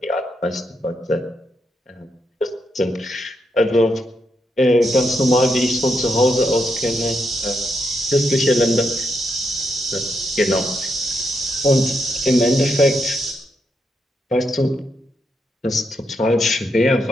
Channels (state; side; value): normal; both; correlation 0.81